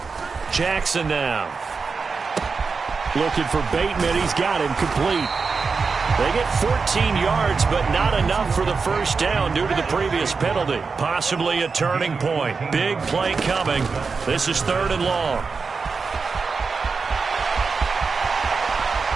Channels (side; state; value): left; quieter; 4.8 dB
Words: Jackson now. Looking for Bateman. He's got him complete. They get 14 yards, but not enough for the first down due to the previous penalty. Possibly a turning point. Big play coming. This is 3rd and long.